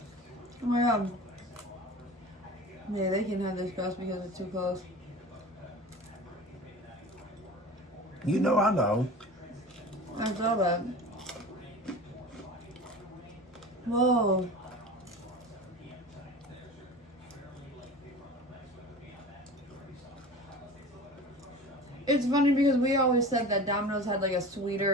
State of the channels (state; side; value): normal; both; correlation 0.36